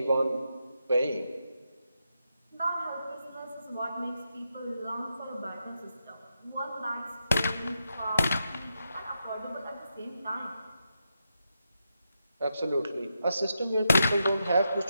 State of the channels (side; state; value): both; inverted; correlation -0.85